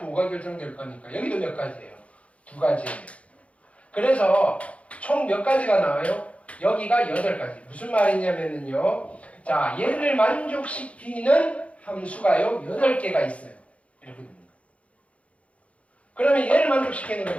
결정될 거니까. 여기도 몇 가지예요? 2가지예요. 그래서 총 몇 가지가 나와요? 여기가 8가지. 무슨 말이냐면요. 자, 얘를 만족시키는 함수가요. 8개가 있어요. 이렇게 됩니다. 그러면 얘를 만족시키는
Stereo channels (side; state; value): right; late; 0.064 ms